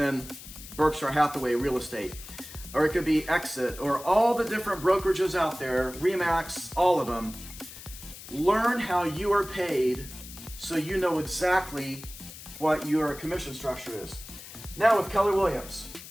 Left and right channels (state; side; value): noise; left; hiss, 15 dB below the sound